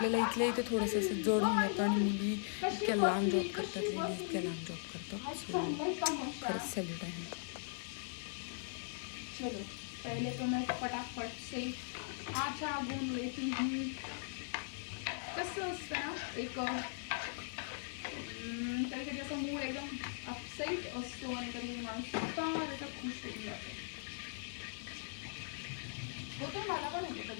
इथल्या इथे थोडंसं असं जड होऊन जातं आणि मुली इतक्या लांब जॉब करतात, लेडीज इतक्या लांब जॉब करतात. सो खरंच सॅल्यूट आहे. चलो पहले तो मैं फटाफट से आटा गूंद लेती हूँ. कसं असतं ना, एक कधी कधी असं मूड एकदम अपसेट असतो आणि कधी माणूस त्याचा खुश होऊन जातो. होतो, मला पण होतो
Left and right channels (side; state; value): right; silent; digital silence